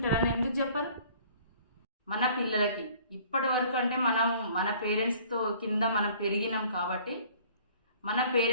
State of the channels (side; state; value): both; inverted; correlation -0.53